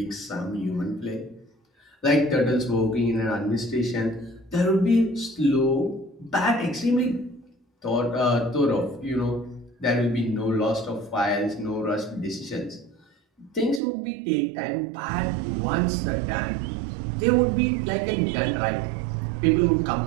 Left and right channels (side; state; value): left; drops out; at 13.8 s